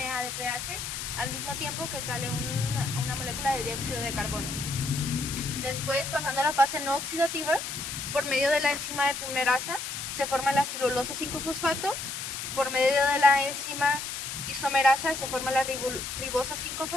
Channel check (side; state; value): left; noise; hiss, 5 dB below the sound